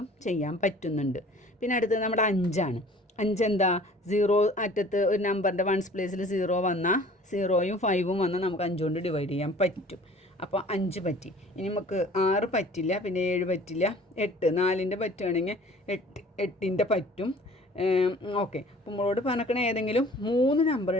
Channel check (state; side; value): normal; both; correlation 0.49